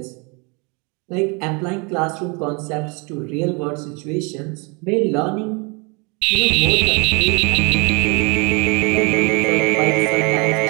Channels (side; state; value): left; quieter; 31.2 dB